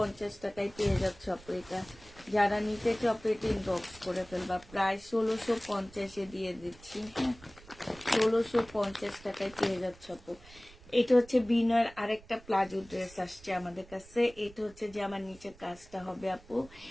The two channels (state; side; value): noise; right; rumble, 22 dB below the sound